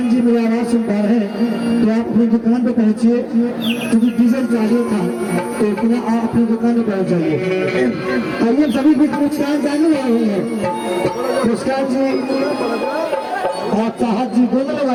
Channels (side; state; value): both; identical; correlation 1.00